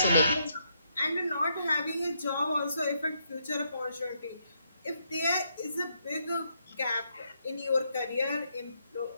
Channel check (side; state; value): both; inverted; correlation -0.77